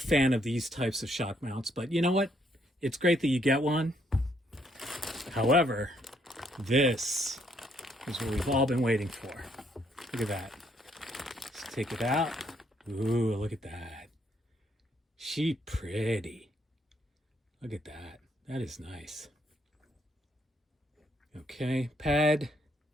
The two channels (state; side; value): normal; both; correlation 0.71